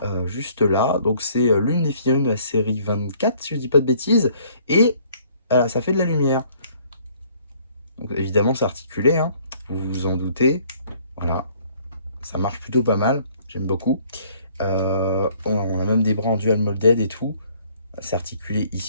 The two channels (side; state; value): both; inverted; correlation -0.60